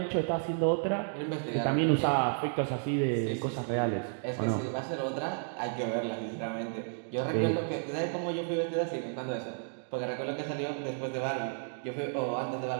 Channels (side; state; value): left; silent; digital silence